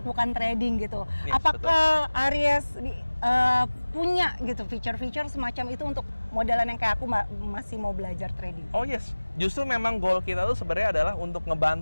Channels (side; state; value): both; inverted; correlation -1.00